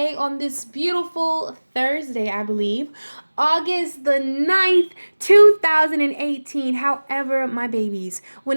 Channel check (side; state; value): both; inverted; correlation -1.00